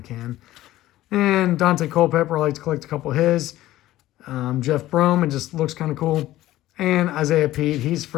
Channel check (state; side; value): quieter; right; 15.3 dB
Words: can. And Dante Culpepper, I like to collect a couple of his. Jeff Brome, it just looks kind of cool. And Isaiah Pete, he's